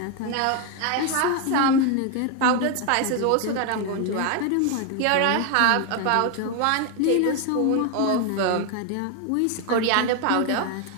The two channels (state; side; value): different; both; correlation 0.01